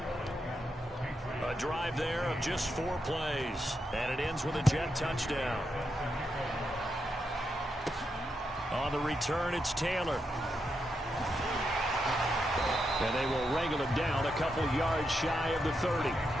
A drive there of just 4 plays. And it ends with a Jet touchdown. On the return, it's Taylor. And they will wrangle him down a couple yards shy of the 30.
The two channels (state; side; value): normal; both; correlation 0.84